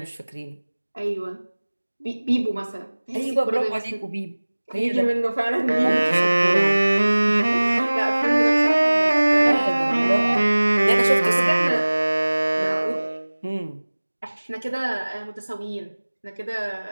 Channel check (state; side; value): inverted; both; correlation -1.00